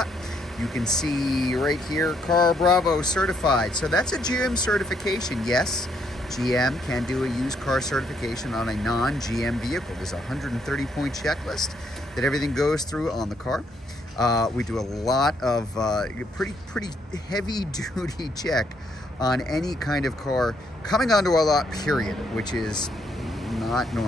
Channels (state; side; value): normal; both; correlation 0.72